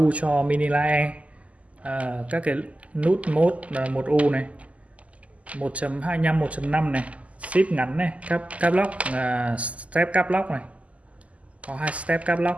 cho mini lae, các cái nút mode 1U này, 1.25, 1.5 này, shift ngắn này, cap lock, step cap lock này, có 2 step cap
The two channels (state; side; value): late; left; 0.068 ms